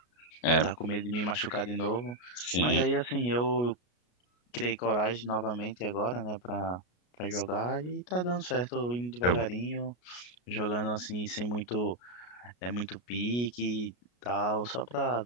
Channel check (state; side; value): late; right; 33 ms